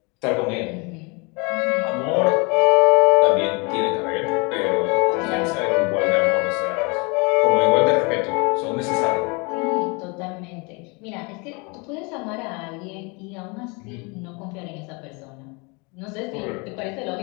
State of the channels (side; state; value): right; quieter; 30.2 dB